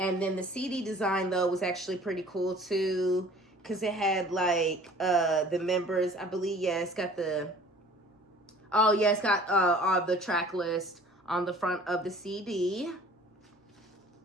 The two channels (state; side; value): normal; both; correlation 0.49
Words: then the CD design though was actually pretty cool too. Because it had, like, the members, I believe, yeah, it's got the, oh, yeah, it's got all the track list on the front of the CD.